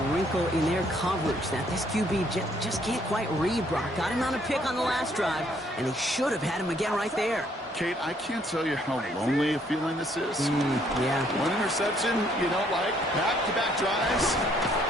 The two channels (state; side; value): normal; both; correlation 0.67